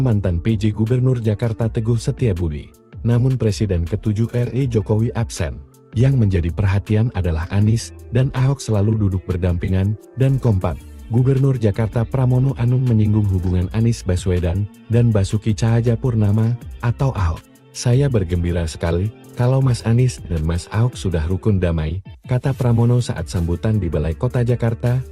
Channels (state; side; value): identical; both; correlation 1.00